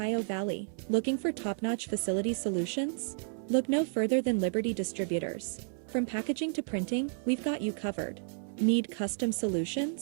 Valley, looking for top-notch facility solutions? Look no further than Liberty Distributors. From packaging to printing, we've got you covered. Need custom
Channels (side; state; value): left; silent; 57 dB below the other